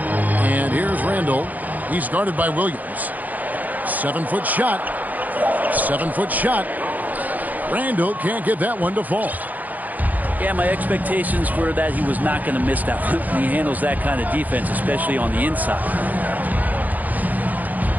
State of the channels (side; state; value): left; late; 0.080 ms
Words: And here's Randall. He's guarded by Williams. 7-foot shot. 7-foot shot. Randall can't get that one to fall. Yeah, my expectations were that he was not going to miss that one. He handles that kind of defense, especially on the inside.